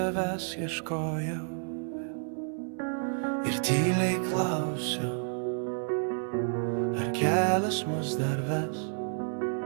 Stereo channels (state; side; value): silent; left; 58 dB below the other